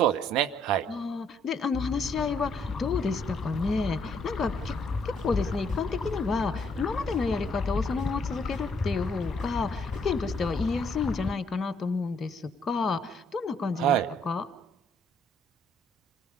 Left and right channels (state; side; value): normal; both; correlation 0.69